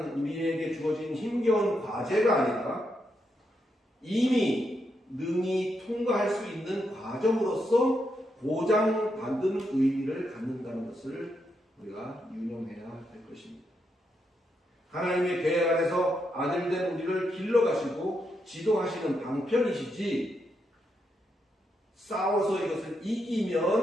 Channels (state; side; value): normal; both; correlation 0.82